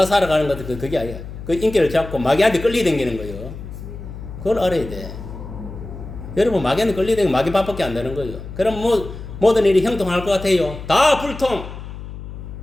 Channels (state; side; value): noise; left; hum, 11 dB below the sound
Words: 살아가는 것도 그게 아니야. 그 인기를 잡고 마귀한테 끌리댕기는 거예요. 그걸 알아야 돼. 여러분 마귀한테 끌리댕기면 마귀 밥밖에 안 되는 거예요. 그럼 뭐 모든 일이 형통할 것 같아요? 다 불통.